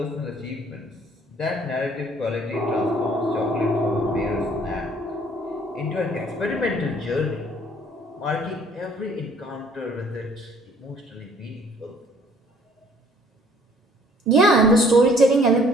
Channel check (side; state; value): both; normal; correlation 0.58